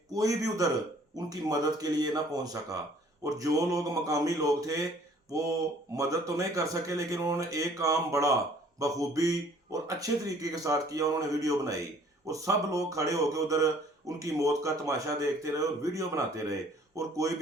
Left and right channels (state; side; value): normal; both; correlation 0.57